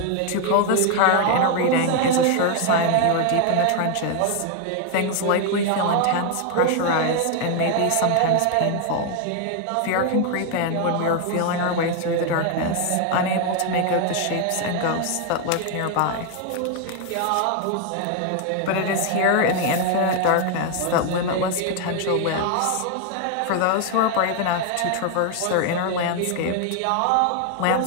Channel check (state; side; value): different; both; correlation 0.00